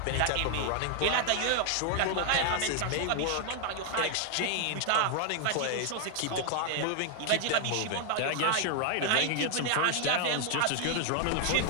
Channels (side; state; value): both; different; correlation 0.00